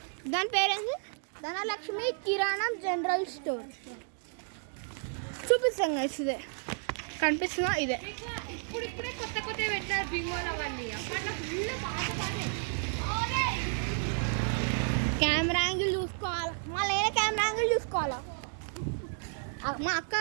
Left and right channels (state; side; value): silent; left; 57 dB below the other